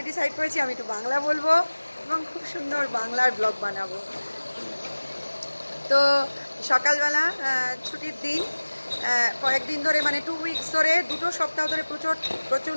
ডিসাইড করেছি আমি একটু বাংলা বলবো এবং খুব সুন্দর বাংলার ব্লগ বানাবো। তো সকালবেলা ছুটির দিন, কয়েকদিন ধরে মানে 2 উইকস ধরে, 2 সপ্তাহ ধরে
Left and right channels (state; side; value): inverted; both; correlation -1.00